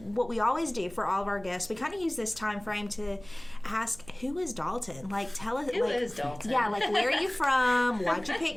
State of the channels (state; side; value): noise; right; hum, 21 dB below the sound